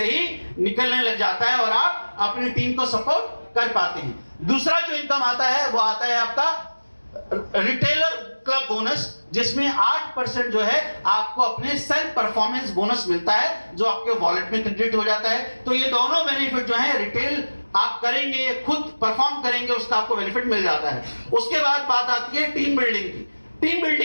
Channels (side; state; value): both; inverted; correlation -1.00